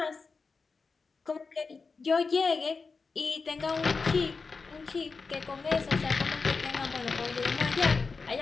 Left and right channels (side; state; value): right; quieter; 4.5 dB